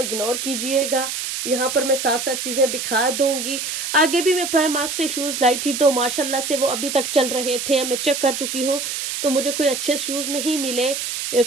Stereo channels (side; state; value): right; noise; hiss, 4 dB below the sound